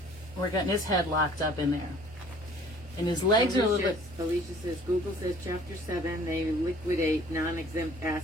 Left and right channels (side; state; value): both; normal; correlation 0.53